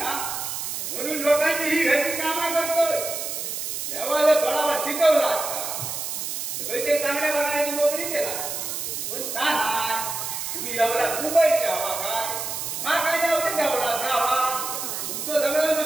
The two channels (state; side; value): noise; right; hiss, 4 dB below the sound